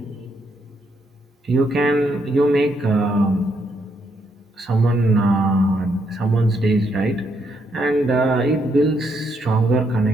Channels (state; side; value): normal; both; correlation 0.76